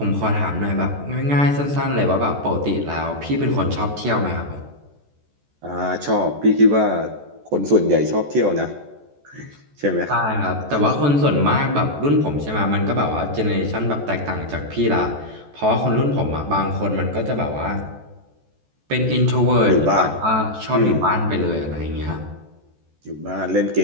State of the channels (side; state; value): left; late; 14 ms